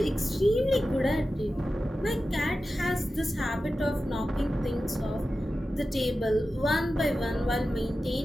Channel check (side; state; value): both; normal; correlation 0.93